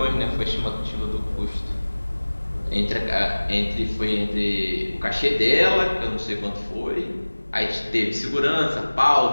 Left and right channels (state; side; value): inverted; both; correlation -1.00